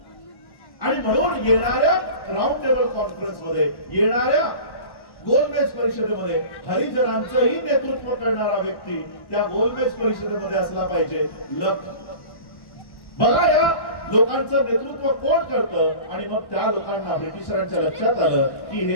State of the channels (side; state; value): right; late; 1.1 ms